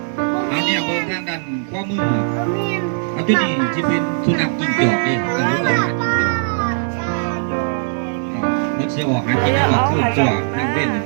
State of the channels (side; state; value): left; silent; digital silence